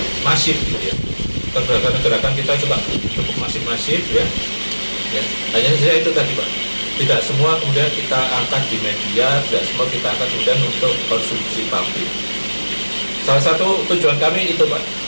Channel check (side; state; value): both; inverted; correlation -1.00